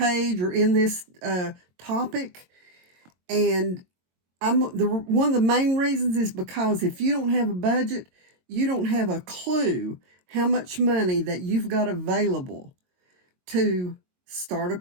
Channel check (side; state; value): left; late; 22 ms